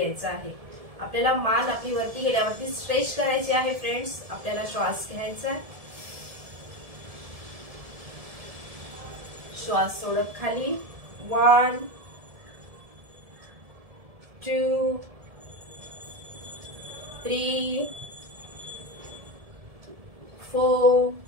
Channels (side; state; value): left; late; 1.7 ms